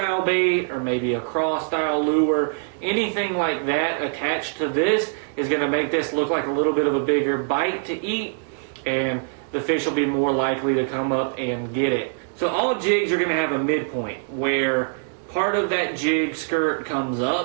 bait or maybe a craw style lure, anything like that attached to this is going to make this look like a little bit of a bigger bite to eat, and the fish will be more likely to come up and get it. So all jigs are going to have a midpoint where part of that jig skirt comes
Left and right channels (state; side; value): silent; left; digital silence